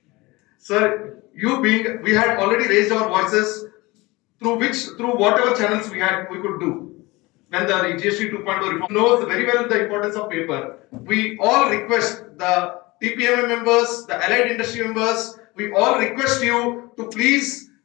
Sir, we had already raised our voices through whatever channels we could do. When the GST 2.0 reform knows very well the importance of paper. We all request the TPMA members, the allied industry members, we all request you to please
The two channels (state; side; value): quieter; right; 22.4 dB